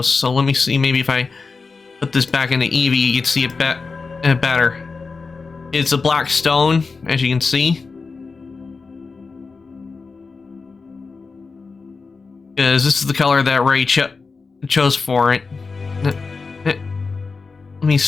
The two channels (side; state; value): right; quieter; 4.4 dB